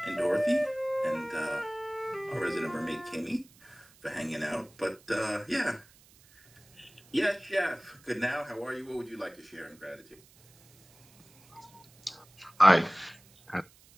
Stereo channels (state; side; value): noise; right; hiss, 27 dB below the sound